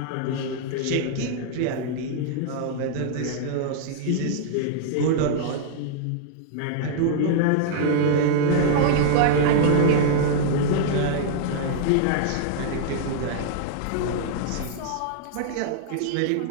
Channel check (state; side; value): different; both; correlation -0.01